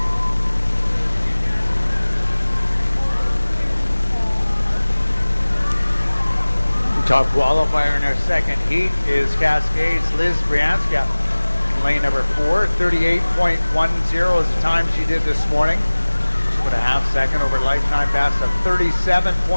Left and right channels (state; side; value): inverted; both; correlation -1.00